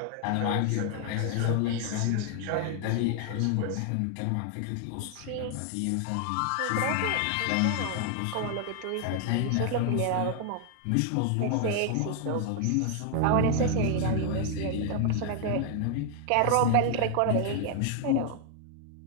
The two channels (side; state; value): both; different; correlation 0.00